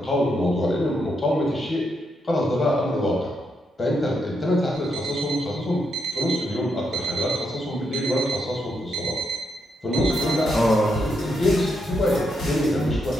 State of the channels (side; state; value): both; normal; correlation 0.80